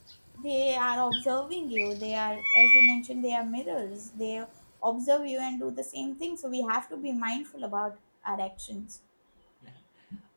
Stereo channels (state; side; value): inverted; both; correlation -1.00